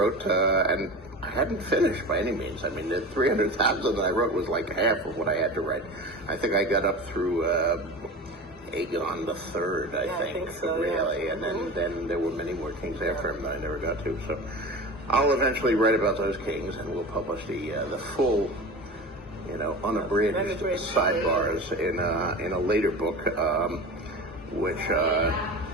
and I hadn't finished by any means. I mean, the 300,000 that I wrote was like half of what I had to write. I think I got up through Aegon the Third, I think so, really. And then there were many more kings after him that I never got to. So I'll eventually write about those kings, and we'll publish the full, unabridged sidebars in a later book, which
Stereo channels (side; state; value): both; normal; correlation 0.32